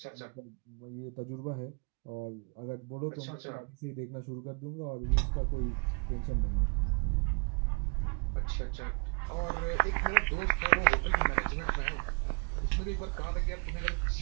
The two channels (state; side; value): quieter; left; 37.2 dB